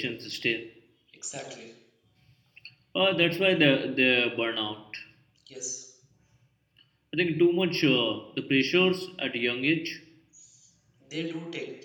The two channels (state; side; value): identical; both; correlation 1.00